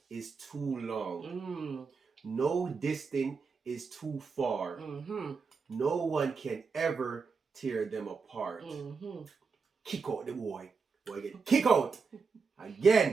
is too long. No distance is too far. No one can ever tear them apart. Kick out the boy. Boy, get kick out.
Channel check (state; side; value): quieter; left; 5.0 dB